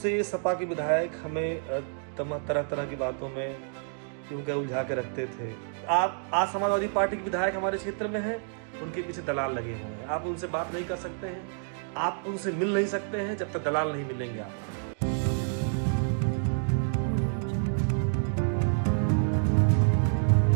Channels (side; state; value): left; silent; digital silence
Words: सपा के विधायक हमें तरह तरह की बातों में क्योंकि उलझा के रखते थे। आप आज समाजवादी पार्टी के विधायक हमारे क्षेत्र में हैं, उनके पीछे दलाल लगे हुए हैं। आप उनसे बात नहीं कर सकते हैं, आप उनसे मिल नहीं सकते हैं जब तक दलाल नहीं मिलेंगे आपको।